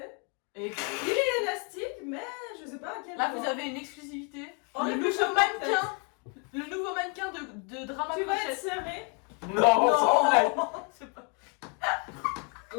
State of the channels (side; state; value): right; quieter; 34.9 dB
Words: Et Il est élastique, mais je sais pas à quel là, point. vous avez une exclusivité. Oh, le le nouveau chapeau, mannequin. Le nouveau mannequin de Drama Tu vas être Crochet. serré. Non, sans blague. C'est pas. Au